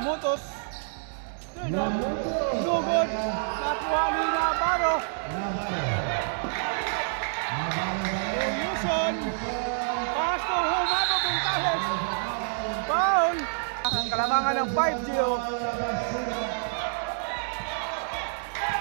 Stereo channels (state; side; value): silent; left; digital silence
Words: No good. Nakuha ni Navarro. Yuson. Pass to Humabong Bongcales. Foul. Ang kalamangan ng 5-0.